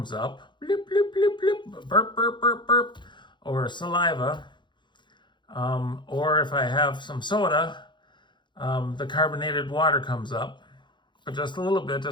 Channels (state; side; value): late; right; 0.22 ms